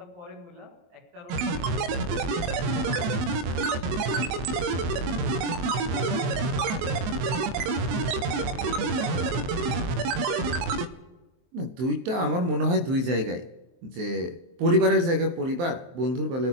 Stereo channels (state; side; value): late; left; 23 ms